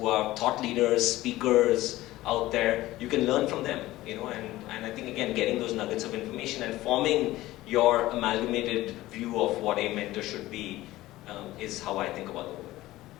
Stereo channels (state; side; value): quieter; right; 16.8 dB